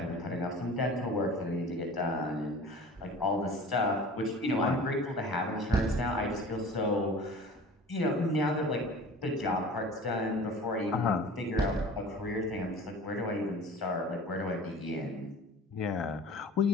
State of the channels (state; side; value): normal; both; correlation 0.41